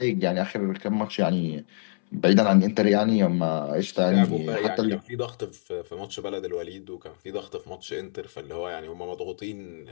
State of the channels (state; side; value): silent; right; 61 dB below the other